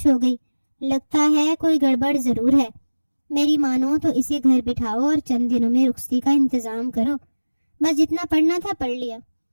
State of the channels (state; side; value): inverted; both; correlation -1.00